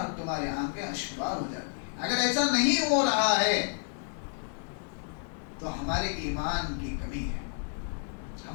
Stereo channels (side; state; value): right; silent; 57 dB below the other